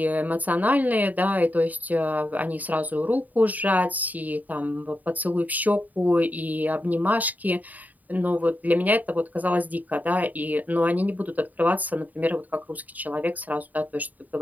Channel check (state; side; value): late; left; 0.079 ms